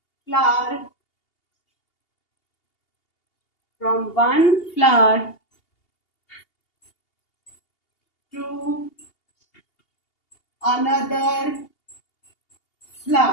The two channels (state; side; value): late; right; 2.8 ms